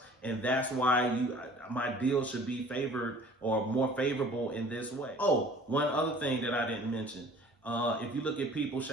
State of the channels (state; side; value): normal; both; correlation 0.49